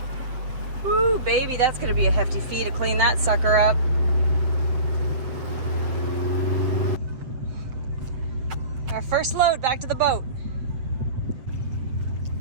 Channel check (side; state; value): left; late; 7.7 ms